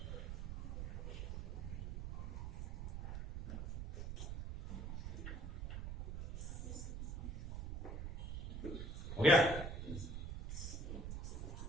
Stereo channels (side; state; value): right; noise; rumble, 5 dB below the sound